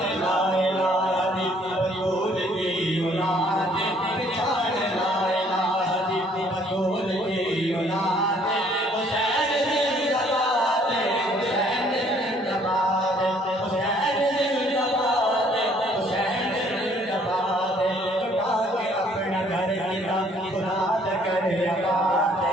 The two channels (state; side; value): normal; both; correlation 0.62